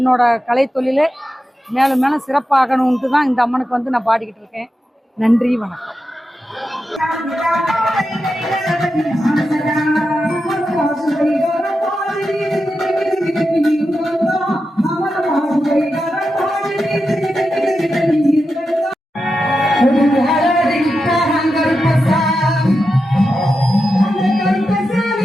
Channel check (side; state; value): both; normal; correlation 0.89